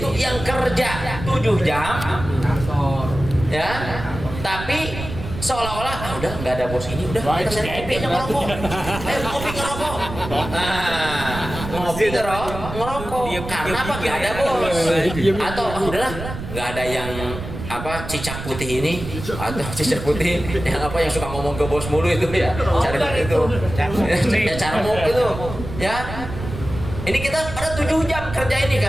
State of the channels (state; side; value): noise; right; rumble, 9 dB below the sound